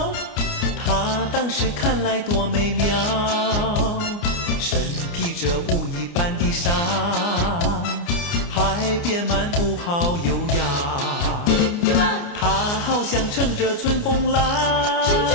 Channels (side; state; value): right; late; 29 ms